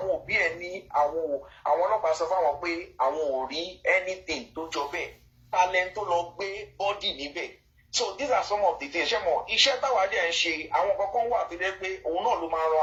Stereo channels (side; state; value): both; identical; correlation 1.00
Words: òbí ẹ̀ ní àwọn ọlọ́pàá sọ fáwọn pé àwọn ò rí anything tó jọ bẹ́ẹ̀ talent tó lọ gbé body níbẹ̀. So these are some of the things. Iṣẹ́ táwa dẹ̀ ń ṣe àwọn kankan wà tó jẹ́ pé òun náà ló máa ran